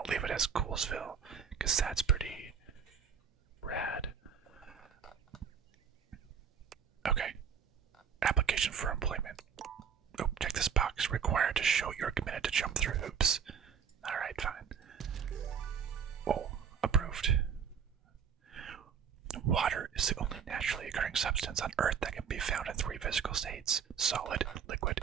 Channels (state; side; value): quieter; left; 7.4 dB